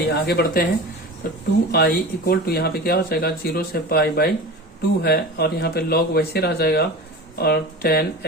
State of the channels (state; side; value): normal; both; correlation 0.32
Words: आगे बढ़ते हैं, तो 2i इक्वल टू यहाँ पे क्या हो जाएगा, 0 से π/2 है, और यहाँ पे log वैसे रह जाएगा, और